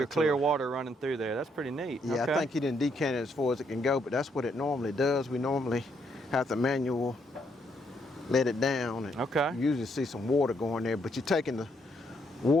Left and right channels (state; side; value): normal; both; correlation 0.74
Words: to clear it. water running through there. That's pretty neat. Yeah, Okay. I think he didn't decant it as far as it can go, but that's what it normally does. We normally have to manual let it down, and Okay. you usually see some water going there, but you're taking the